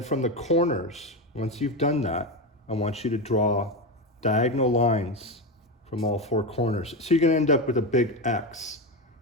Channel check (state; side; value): normal; both; correlation 0.15